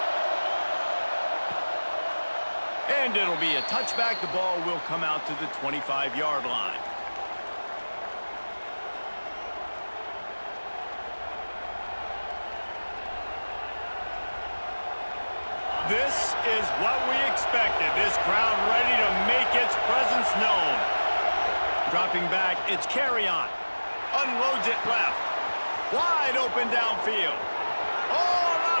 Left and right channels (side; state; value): both; inverted; correlation -1.00